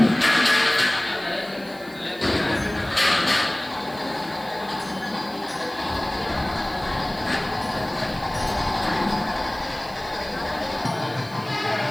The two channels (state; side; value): noise; right; hiss, 22 dB below the sound